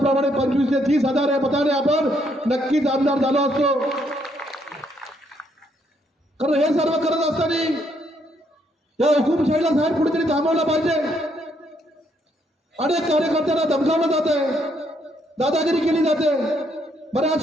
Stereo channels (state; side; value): normal; both; correlation 0.72